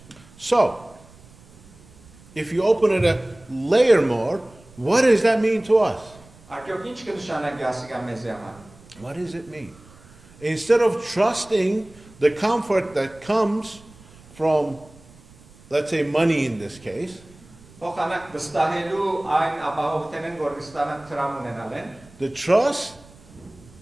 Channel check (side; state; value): right; noise; rumble, 24 dB below the sound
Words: So, if you open it a layer more, what does that mean to us? Արկեոք ինչ կնշանակի ասիկա մեզի համար։ What does it mean? Instead of trusting the comfort that comes from, let's say, money in this case, Փոխանակ վստահելու այն ապահովությունն, որ կստանան տրամ ունենալ են, the trust,